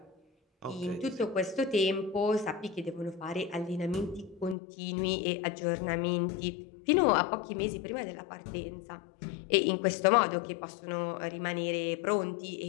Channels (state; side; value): drops out; right; at 4.5 s